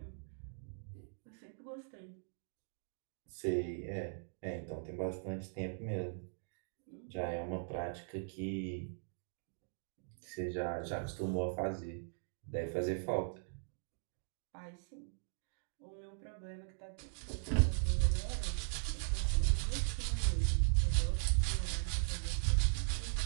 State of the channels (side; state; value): left; silent; digital silence